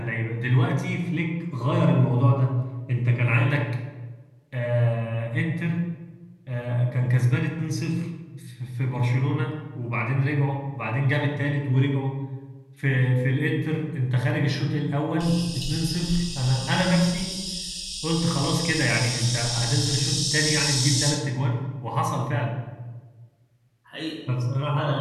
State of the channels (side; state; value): both; identical; correlation 1.00